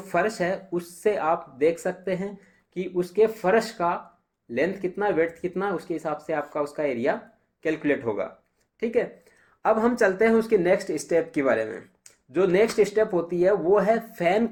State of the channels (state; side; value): identical; both; correlation 1.00